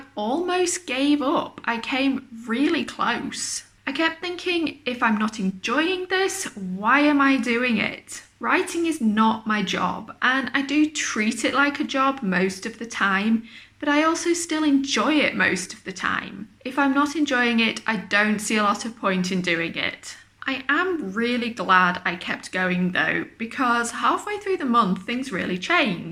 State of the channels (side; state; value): both; identical; correlation 1.00